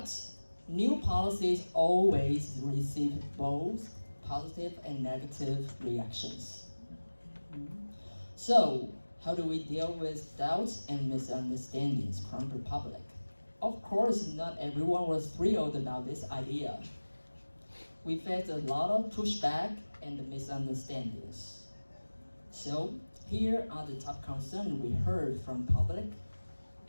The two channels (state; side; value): inverted; both; correlation -1.00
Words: new policies always receive both positive and negative reactions. So, how do we deal with doubts and misunderstandings from the public? Of course, not everyone was thrilled about this idea. We faced a lot of pushback and misunderstandings. So, here are the top concerns we heard from public